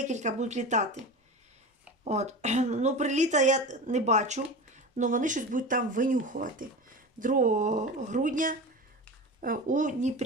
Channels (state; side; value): normal; both; correlation 0.29